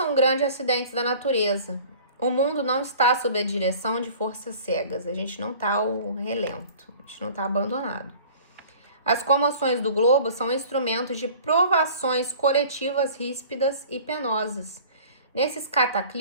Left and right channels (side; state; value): both; inverted; correlation -0.46